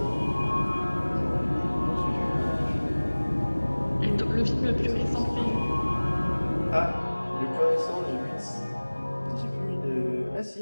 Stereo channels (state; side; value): inverted; both; correlation -1.00